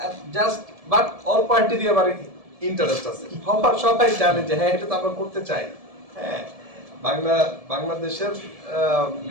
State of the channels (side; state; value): left; late; 1.7 ms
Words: জাস্ট বাট অল পার্টি দিয়ে আবার ইন্টারেস্ট আছে, সবাই জানে যে হ্যাঁ এটা তো আমরা করতে চাই। হ্যাঁ, বাংলাদেশের